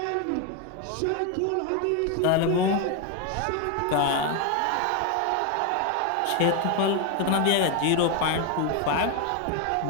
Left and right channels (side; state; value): both; different; correlation 0.01